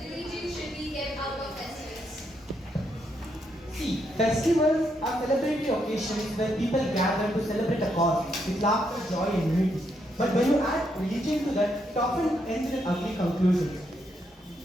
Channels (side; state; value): both; normal; correlation 0.78